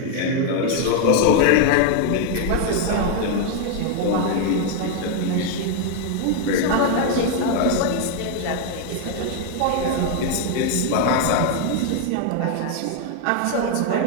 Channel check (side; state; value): both; different; correlation 0.01